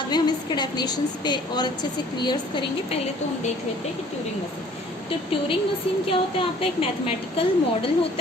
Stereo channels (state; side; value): normal; both; correlation 0.54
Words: में हम इसके डेफिनेशंस पे और अच्छे से क्लियर्स करेंगे। पहले तो हम देख लेते हैं कि ट्यूरिंग मशीन। तो ट्यूरिंग मशीन क्या होता है? आपका एक मैथमेटिकल मॉडल